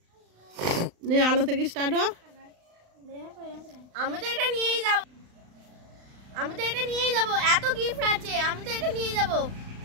নে আলো থেকে স্টার্ট হও। আমি তো এটা নিয়েই যাব, এত গিফট আছে, আমি তো এটা নিয়ে যাব।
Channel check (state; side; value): late; left; 35 ms